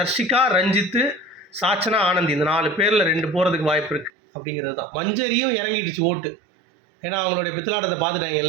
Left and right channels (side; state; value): left; drops out; at 4.1 s